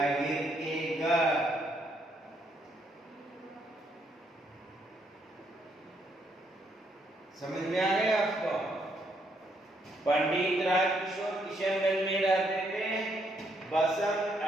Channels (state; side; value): normal; both; correlation 0.73